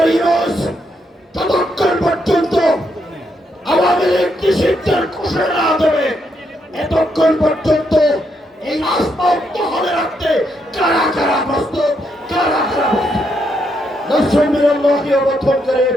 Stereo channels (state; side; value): normal; both; correlation 0.78